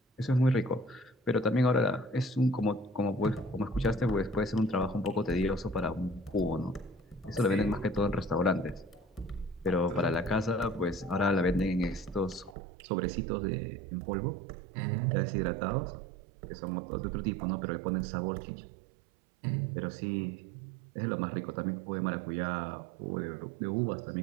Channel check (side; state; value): left; drops out; at 12.6 s